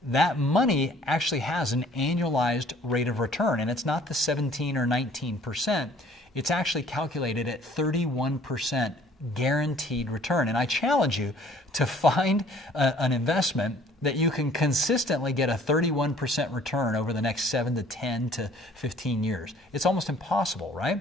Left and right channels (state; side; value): normal; both; correlation 0.56